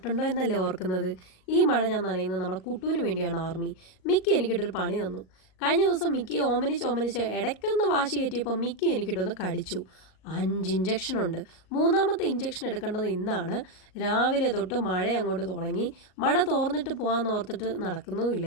എന്നല്ലേ ഓർക്കുന്നത്. ഈ മഴ ഞാൻ നനയുന്നത് നമ്മുടെ കുട്ടുവിന് വേണ്ടിയാണ്. ആർമി മിക്കി എനിക്കിട്ടൊരു പണി തന്നു. കഴിഞ്ഞ ദിവസം മിക്കിയെ ഓമനിച്ച് ഇടയ്ക്കൊന്ന് വാശി കയറ്റിയപ്പോൾ മിക്കി എനിക്കിട്ടൊന്ന് കടിച്ചു. 5 ഇഞ്ചക്ഷൻ ഉണ്ട്. മൂന്നാമത്തെ ഇഞ്ചക്ഷൻ എടുക്കേണ്ടത് ഇന്നാണ്. രാവിലെ തൊട്ട് മഴ അങ്ങോട്ട് തുടങ്ങി. മഴ തോർന്നിട്ട് പോകാമെന്ന് ഓർത്തിട്ട്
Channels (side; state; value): right; late; 38 ms